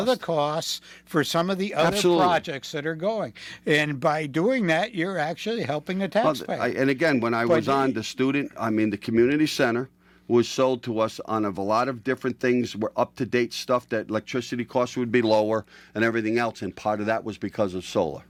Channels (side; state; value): both; identical; correlation 1.00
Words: the costs for some of the other Absolutely. projects that are going. And by doing that, you're actually helping the taxpayer. And again, when I was on the community center was sold to us on a lot of different things, were up-to-date stuff, that electricity costs would be lower and everything else, and part of that was because of solar.